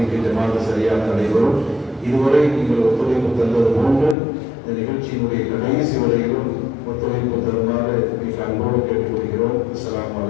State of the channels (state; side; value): drops out; right; at 4.2 s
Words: ஜமாத்து சரியாக நடைபெறும். இதுவரை நீங்கள் ஒத்துழைப்பு தந்தது போன்று இந்த நிகழ்ச்சியினுடைய கடைசி வரையிலும் ஒத்துழைப்பு தருமாறு மிக அன்போடு கேட்டுக்கொள்கிறோம். அஸ்ஸலாமு